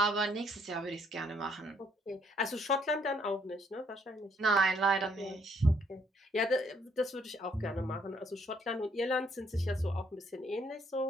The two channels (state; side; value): normal; both; correlation 0.68